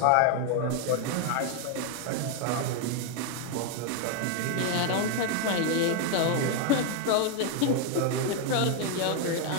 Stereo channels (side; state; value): both; different; correlation 0.01